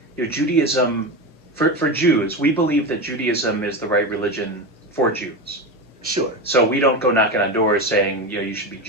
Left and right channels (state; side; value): normal; both; correlation 0.20